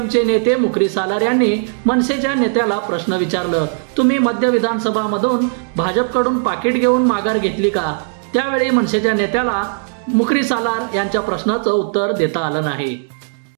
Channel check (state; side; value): silent; left; digital silence